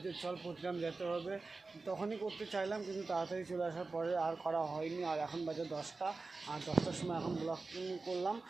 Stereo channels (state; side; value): quieter; left; 3.8 dB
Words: যে চল প্রতিগ্রাম যেতে হবে। তখনই করতে চাইলাম, কিন্তু তাড়াতাড়ি চলে আসার পরে আর করা হয়নি। আর এখন বাজে 10টা, আর 10টার সময় এখন ব্লগ করলাম।